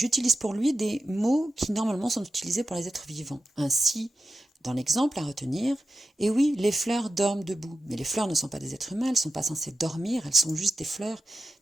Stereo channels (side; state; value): both; normal; correlation 0.89